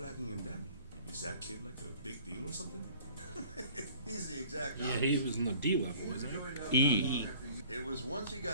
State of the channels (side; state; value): both; inverted; correlation -0.50